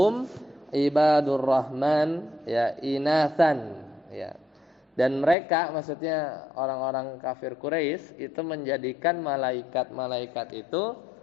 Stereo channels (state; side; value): drops out; right; at 5.4 s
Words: ibadur rahman ya inathan ya. Dan mereka, maksudnya orang-orang kafir Quraisy itu menjadikan malaikat-malaikat itu